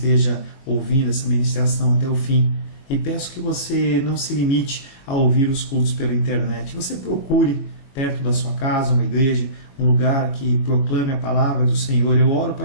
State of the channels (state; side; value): late; right; 22 ms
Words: ouvindo essa ministração até o fim. E peço que você não se limite a ouvir os cultos pela internet. Você procure perto da sua casa uma igreja, um lugar que proclame a palavra do Senhor. Eu oro para